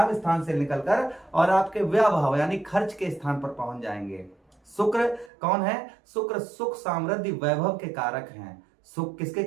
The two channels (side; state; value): left; drops out; at 5.3 s